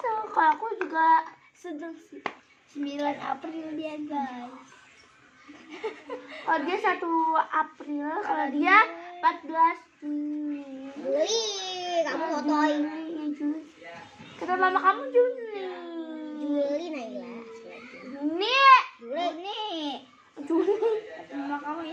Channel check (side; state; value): both; identical; correlation 1.00